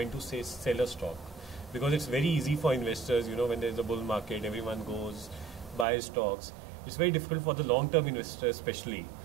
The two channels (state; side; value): drops out; left; at 5.9 s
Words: to say sell a stock? Because it's very easy for investors, when there's a bull market, everyone goes, buys stocks. It's very difficult for the long-term investor especially